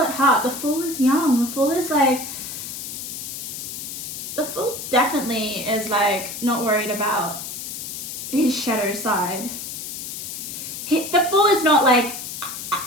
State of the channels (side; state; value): left; noise; hiss, 7 dB below the sound